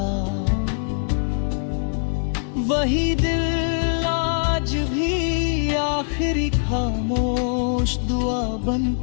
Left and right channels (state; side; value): silent; right; 62 dB below the other